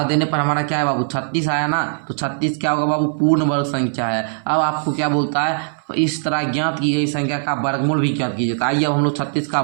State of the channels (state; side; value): silent; left; 60 dB below the other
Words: देने पर हमारा क्या है बाबू 36 आया ना। तो 36 क्या होगा बाबू, पूर्ण वर्ग संख्या है। अब आपको क्या बोलता है, इस तरह ज्ञात की गई संख्या का वर्गमूल भी ज्ञात कीजिए। तो आइए अब हम लोग 36 का